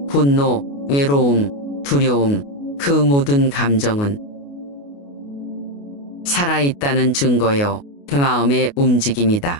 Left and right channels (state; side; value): late; right; 28 ms